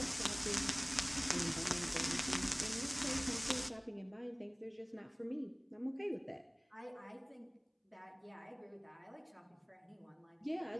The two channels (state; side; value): identical; both; correlation 1.00